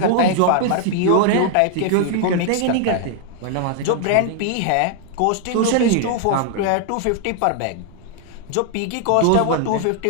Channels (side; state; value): both; different; correlation 0.00